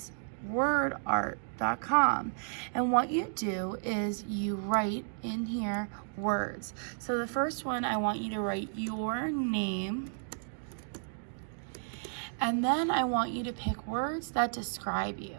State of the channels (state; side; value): silent; left; digital silence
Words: wordart.com. And what you do is you write in here words. So the first one, I want you to write your name. And then I want you to pick words that describe